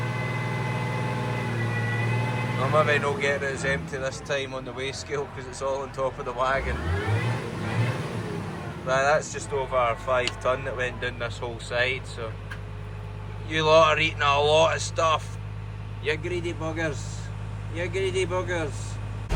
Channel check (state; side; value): identical; both; correlation 1.00